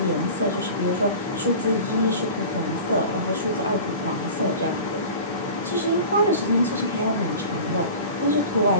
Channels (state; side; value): inverted; both; correlation -0.37